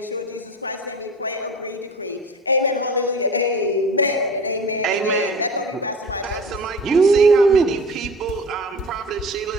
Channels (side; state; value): both; normal; correlation 0.38